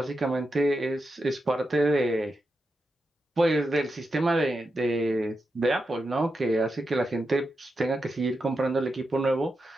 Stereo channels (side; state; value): both; normal; correlation 0.88